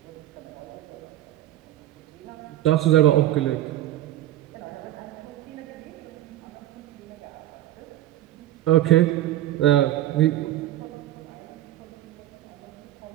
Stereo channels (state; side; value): quieter; left; 14.1 dB